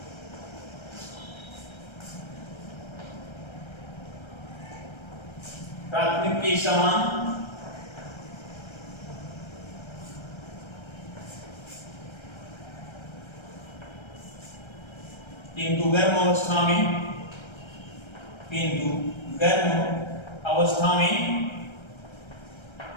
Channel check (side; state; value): right; late; 1.3 ms